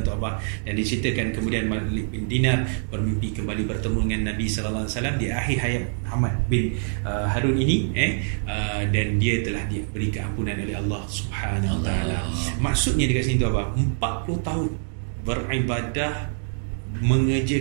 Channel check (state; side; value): silent; left; digital silence